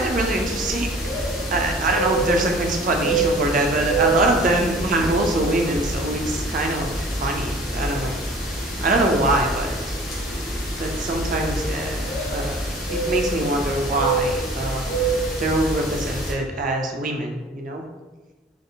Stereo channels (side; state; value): both; normal; correlation 0.47